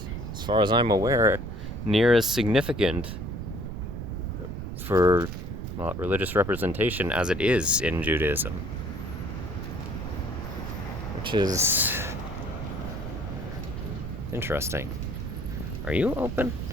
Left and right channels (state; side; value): noise; right; rumble, 7 dB below the sound